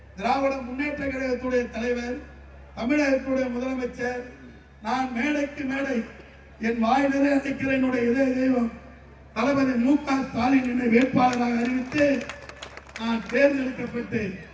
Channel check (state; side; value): identical; both; correlation 1.00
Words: திராவிட முன்னேற்ற கழகத்துடைய தலைவர், தமிழகத்துடைய முதலமைச்சர், நான் மேடைக்கு மேடை என் வாய் நிறைய அழைக்கிற என்னுடைய இதய தெய்வம் தளபதி மு.க. ஸ்டாலின் என்னை வேட்பாளராக அறிவித்து நான் தேர்ந்தெடுக்கப்பட்டு